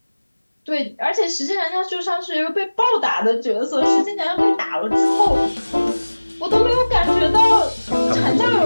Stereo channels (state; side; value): inverted; both; correlation -1.00